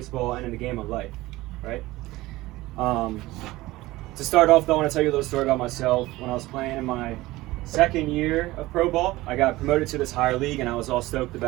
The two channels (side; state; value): left; quieter; 18.5 dB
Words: and in the game of life, right? To start off, though, I want to tell you a little story about myself. When I was playing in my second year of pro ball, I got promoted to this higher league, and I was all stoked